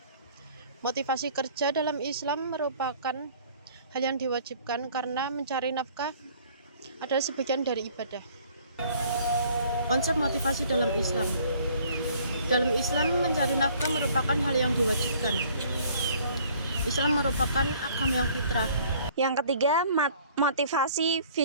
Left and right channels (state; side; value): inverted; both; correlation -0.56